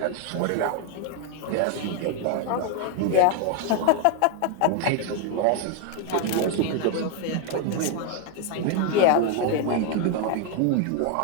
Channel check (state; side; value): different; both; correlation 0.01